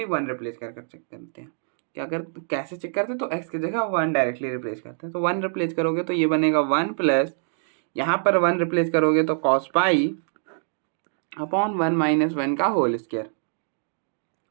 1 रिप्लेस कर चेक करते हैं। क्या कर कैसे चेक करते हैं, तो एक्स की जगह 1 डायरेक्टली रिप्लेस करते हैं। तो 1 रिप्लेस करोगे तो ये बनेगा 1 प्लस, यहाँ पर 1 रिप्लेस करोगे तो कॉस पाई अपॉन 1 माइनस 1 का होल स्क्वायर।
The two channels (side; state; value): left; silent; digital silence